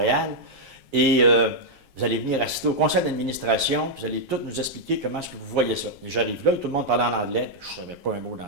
Et vous allez venir assister au conseil d'administration, vous allez tout nous expliquer comment est-ce que vous voyez ça. » Et j'arrive là, et tout le monde parlait en anglais. Je ne savais pas un mot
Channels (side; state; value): left; late; 7.4 ms